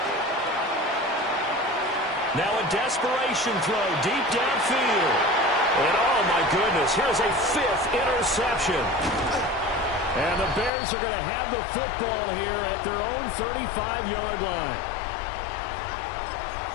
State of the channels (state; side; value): drops out; right; at 10.7 s